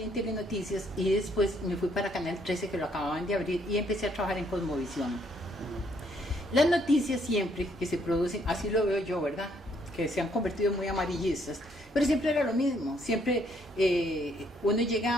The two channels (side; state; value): both; normal; correlation 0.69